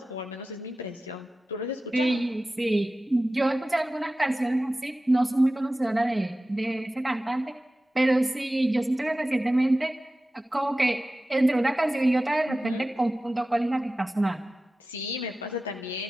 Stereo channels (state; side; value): normal; both; correlation 0.95